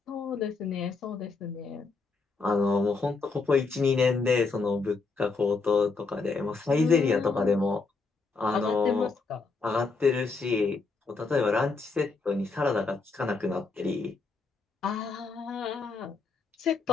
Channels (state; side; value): quieter; right; 4.2 dB